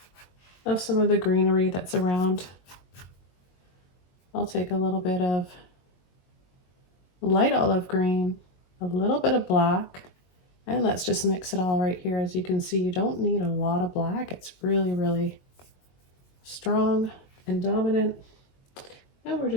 Of some of the greenery that's around. I'll take a little bit of light olive green, a little bit of black, and let's just mix it all right here. As you can see, you don't need a lot of black. It's really, really strong and dominant. And we're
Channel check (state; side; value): late; right; 22 ms